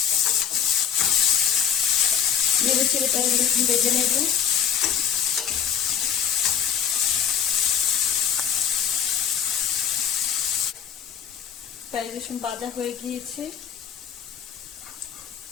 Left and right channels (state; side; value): quieter; right; 8.3 dB